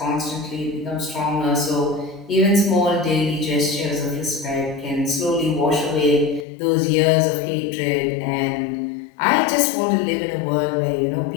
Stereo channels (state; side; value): drops out; right; at 6.5 s